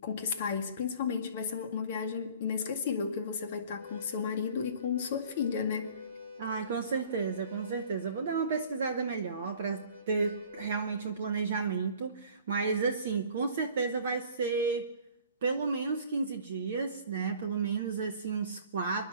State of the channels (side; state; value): both; inverted; correlation -0.50